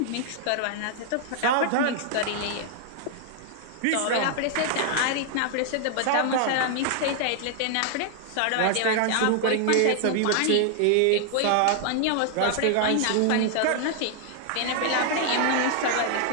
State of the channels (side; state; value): both; different; correlation 0.00